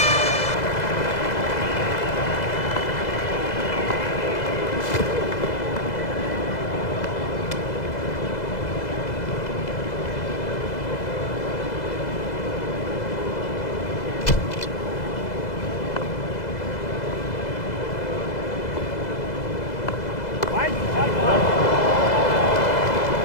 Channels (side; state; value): right; late; 2.0 ms